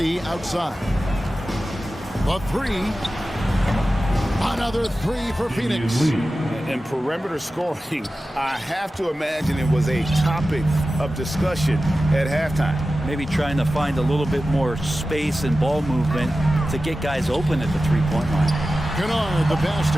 outside. The 3. Another 3 for Phoenix. And perimeter scoring, I have to imagine it was a topic of discussion at halftime. Maybe trying to find a little bit more space and ball movement to get guys open at the 3-point line. Kennard, the pass to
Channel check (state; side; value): normal; both; correlation 0.94